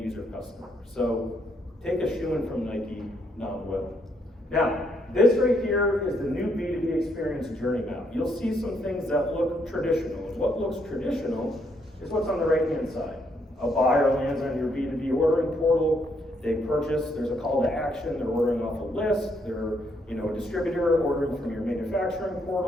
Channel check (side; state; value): both; normal; correlation 0.73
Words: customer. So take a shoe-in from Nike, not Will. Now, this right here is the new B2B experience journey map. You'll see some things that look traditional. And what looks traditional is what's on the right-hand side. A buyer lands on your B2B ordering portal, they purchase, there's a call to action, they're ordering off a list, they're a distributor ordering from your manufacturing